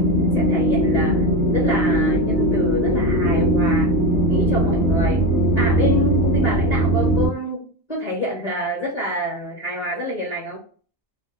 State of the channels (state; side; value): late; right; 1.8 ms